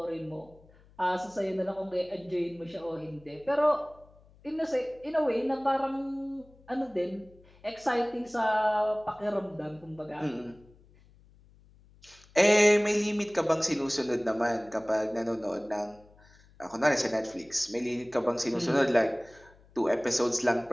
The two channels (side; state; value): left; noise; hum, 27 dB below the sound